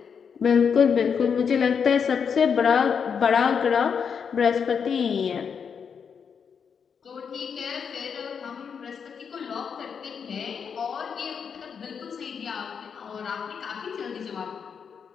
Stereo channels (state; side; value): quieter; right; 6.7 dB